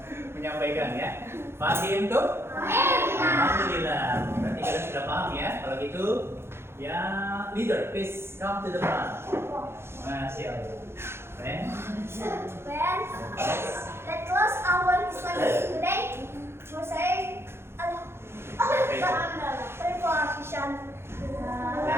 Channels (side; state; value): left; late; 0.12 ms